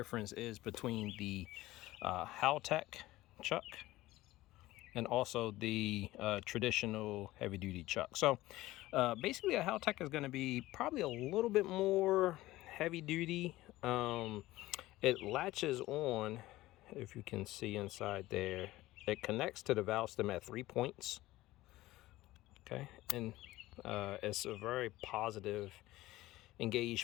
is between the Haltec chuck and also the traditional heavy duty chuck. So basically a Haltec is going to be probably a little bit more heavy duty. It latches on, if you can see inside there, it connects to the valve stem at 3 points. Okay, and it's a very positive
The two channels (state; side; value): quieter; right; 17.3 dB